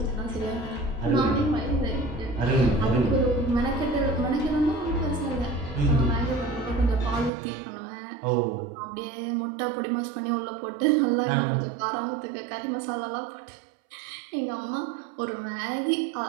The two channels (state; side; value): drops out; left; at 7.3 s